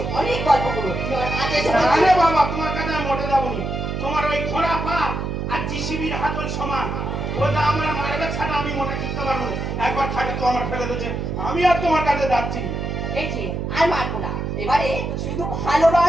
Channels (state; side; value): noise; right; hum, 3 dB below the sound